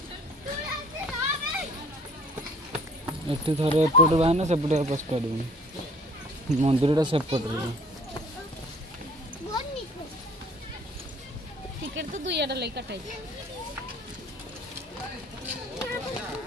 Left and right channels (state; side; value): normal; both; correlation 0.53